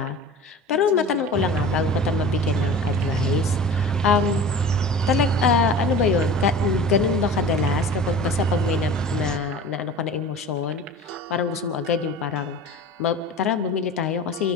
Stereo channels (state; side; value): normal; both; correlation 0.38